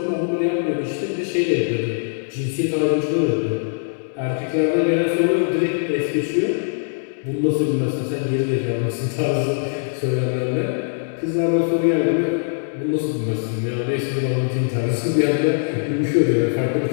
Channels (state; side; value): silent; right; digital silence